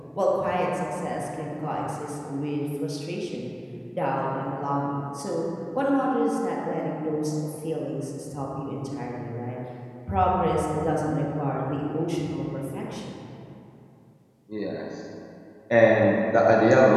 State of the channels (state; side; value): identical; both; correlation 1.00